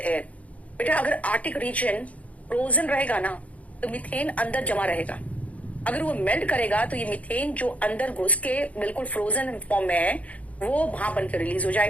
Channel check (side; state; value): right; late; 0.067 ms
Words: air। बेटा अगर आर्टिक रीजन फ्रोजन रहेगा ना तो मीथेन अंदर जमा रहेगा, अगर वो मेल्ट करेगा तो ये मीथेन जो अंदर घुस के बिल्कुल फ्रोजन फॉर्म में है वो वहां बन के रिलीज हो